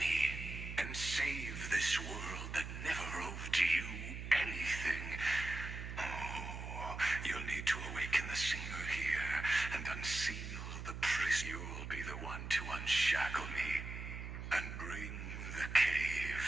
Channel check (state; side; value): noise; right; hum, 7 dB below the sound